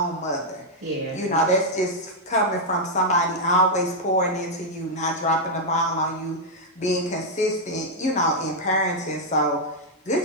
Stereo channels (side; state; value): both; normal; correlation -0.03